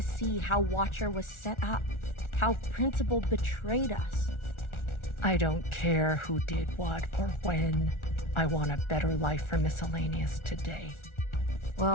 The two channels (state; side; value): late; right; 1.4 ms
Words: see how Watcher was set up, how Principal betrayed us. I don't care who did what or when. I want a better life for Miscellaneous today.